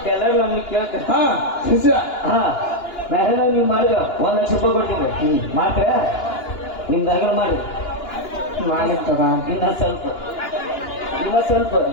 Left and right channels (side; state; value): right; late; 2.9 ms